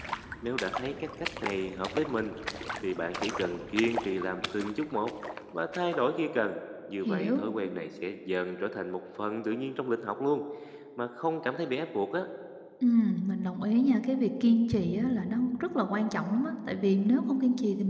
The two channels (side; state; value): both; identical; correlation 1.00